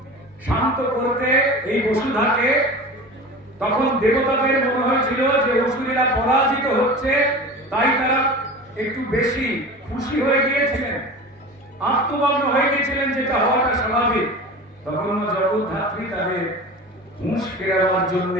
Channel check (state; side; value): normal; both; correlation 0.34